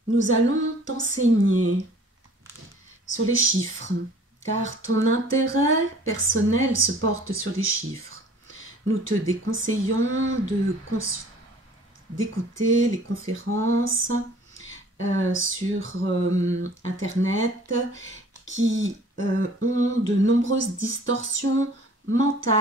Nous allons t'enseigner sur les chiffres, car ton intérêt personnel se porte sur les chiffres. Nous te déconseillons d'écouter les conférences sur Internet qui ont de nombreuses distorsions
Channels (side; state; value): both; normal; correlation 0.50